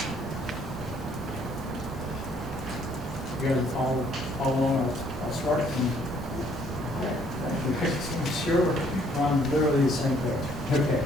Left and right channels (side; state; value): both; normal; correlation 0.64